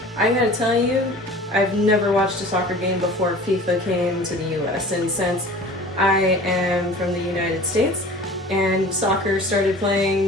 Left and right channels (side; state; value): both; normal; correlation 0.42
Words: I gotta tell you, I've never watched a soccer game before FIFA came to the US, and since I am from the United States and soccer started